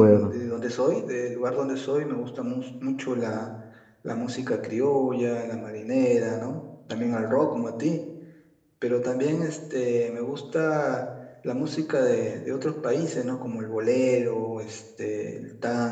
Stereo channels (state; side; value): identical; both; correlation 1.00